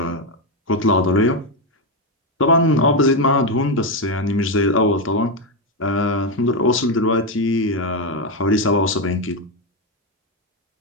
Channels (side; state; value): both; normal; correlation 0.07